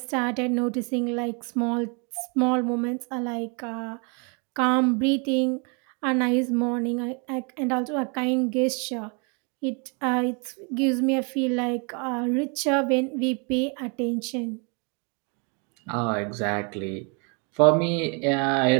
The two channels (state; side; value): quieter; left; 34.7 dB